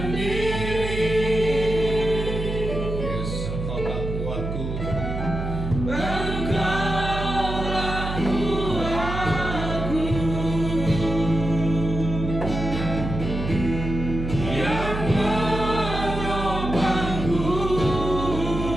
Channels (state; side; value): noise; right; hum, 5 dB below the sound